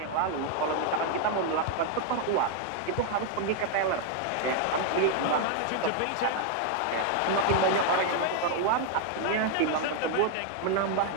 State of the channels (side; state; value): both; different; correlation 0.00